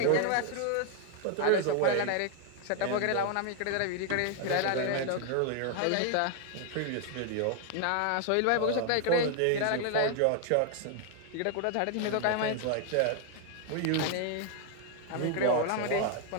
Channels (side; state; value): both; different; correlation 0.00